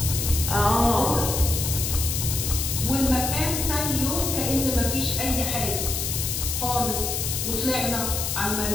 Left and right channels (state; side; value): noise; left; hiss, 2 dB below the sound